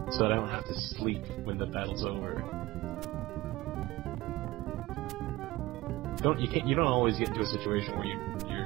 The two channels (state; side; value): quieter; left; 18.8 dB